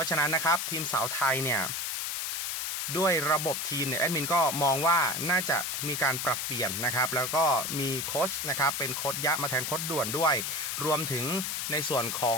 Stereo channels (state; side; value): noise; left; hiss, 2 dB below the sound